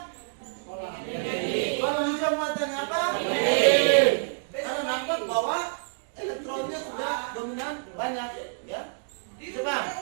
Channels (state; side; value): silent; left; digital silence